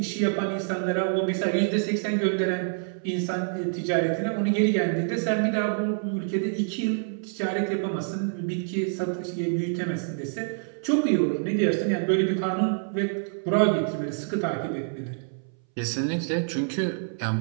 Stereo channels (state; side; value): silent; left; 60 dB below the other